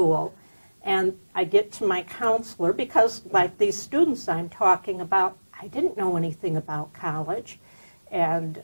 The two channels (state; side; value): inverted; both; correlation -1.00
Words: and I get to my counselor because, like these students I'm talking about, I didn't know anything about college. And,